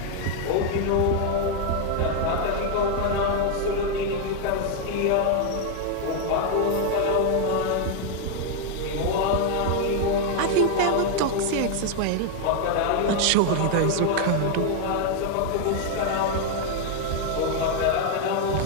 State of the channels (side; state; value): both; different; correlation 0.00